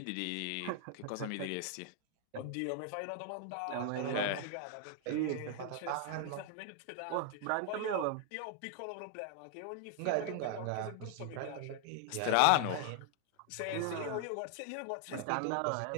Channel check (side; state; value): both; different; correlation 0.00